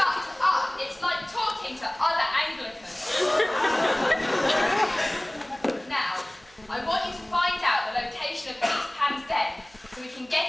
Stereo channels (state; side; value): noise; right; hum, 30 dB below the sound